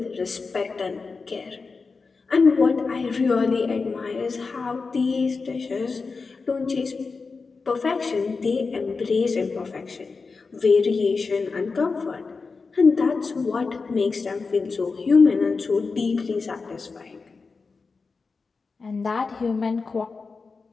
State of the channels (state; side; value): quieter; right; 4.5 dB